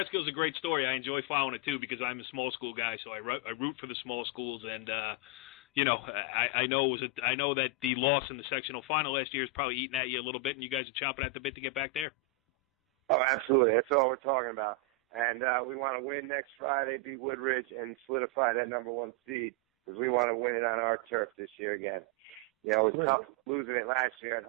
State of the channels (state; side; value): normal; both; correlation 0.01